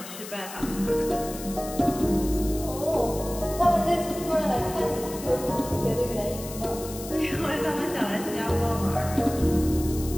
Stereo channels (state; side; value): noise; left; hiss, 12 dB below the sound